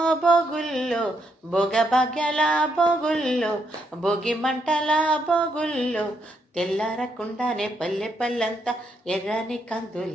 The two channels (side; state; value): both; normal; correlation 0.77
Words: బొగుల్లో బొగ బగల బొగుల్లో బొగి మంటల బొగుల్లో తెల్లారకుండానే పల్లె పల్లెంతా ఎర్రని